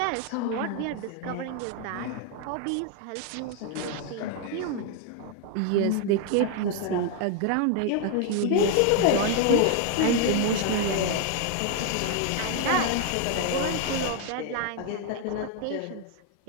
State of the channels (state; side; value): different; both; correlation 0.00